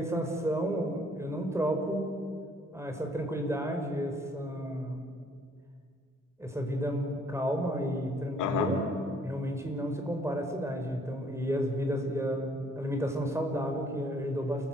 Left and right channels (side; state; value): both; normal; correlation 0.62